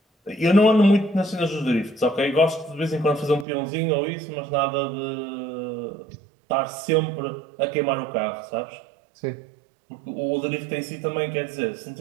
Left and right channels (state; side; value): drops out; left; at 3.5 s